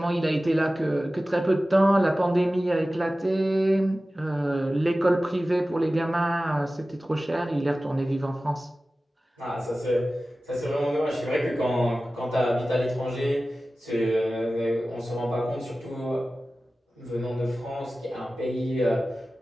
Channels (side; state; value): both; normal; correlation 0.96